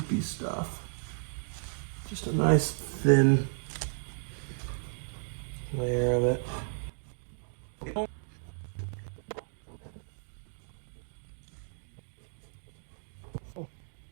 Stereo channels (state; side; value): silent; left; digital silence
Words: stuff. Just a nice thin layer of it. All